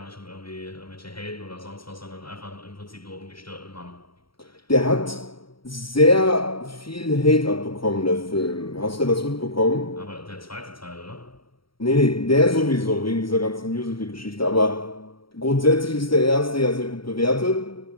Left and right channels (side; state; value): right; late; 0.74 ms